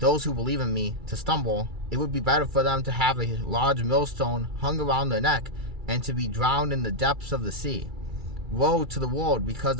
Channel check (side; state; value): left; late; 2.3 ms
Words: who believe in me, to stumble, it would be better for them to have a large millstone hung around their neck and to be drowned in the depths of the sea. Woe to the world because